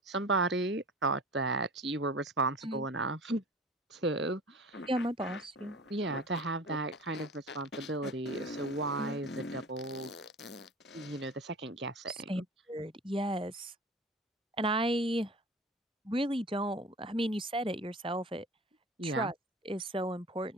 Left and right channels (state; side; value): normal; both; correlation 0.39